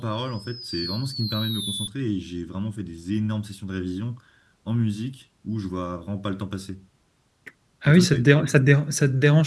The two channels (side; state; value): both; identical; correlation 1.00